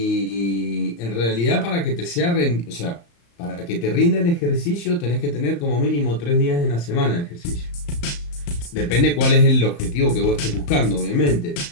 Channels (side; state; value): right; late; 35 ms